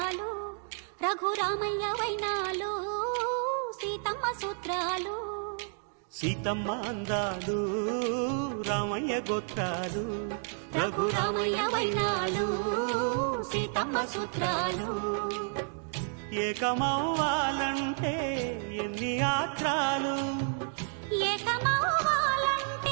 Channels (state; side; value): silent; left; 57 dB below the other